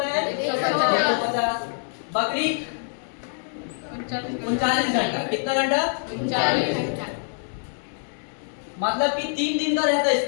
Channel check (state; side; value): silent; right; digital silence